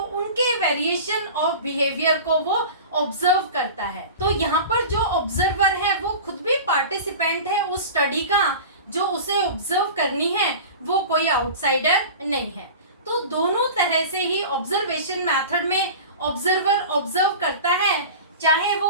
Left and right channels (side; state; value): both; inverted; correlation -0.35